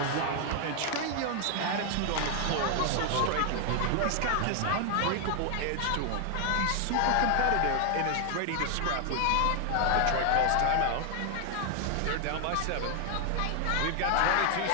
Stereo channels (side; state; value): both; different; correlation 0.00